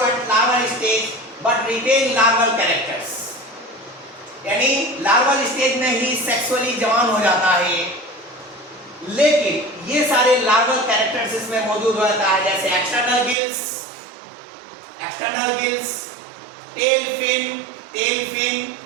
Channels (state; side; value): drops out; left; at 13.4 s